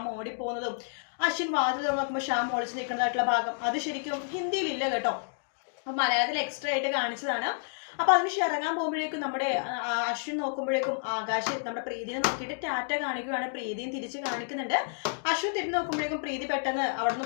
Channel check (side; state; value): right; silent; digital silence